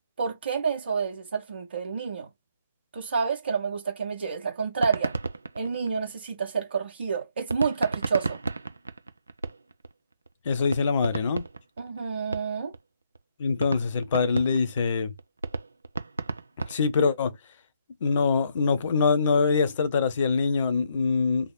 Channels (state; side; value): inverted; both; correlation -0.74